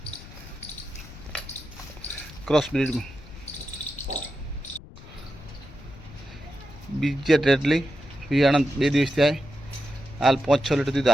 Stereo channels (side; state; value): left; noise; rumble, 17 dB below the sound